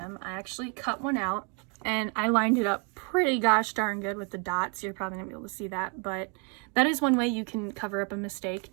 I actually cut one out and I lined it up pretty gosh darn good with the dots. You're probably gonna be able to see that, but that is one way you can cover up a mistake.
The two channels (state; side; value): quieter; left; 36.3 dB